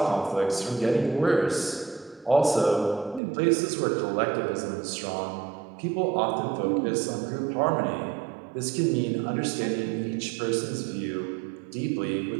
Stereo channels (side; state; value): left; drops out; at 3.2 s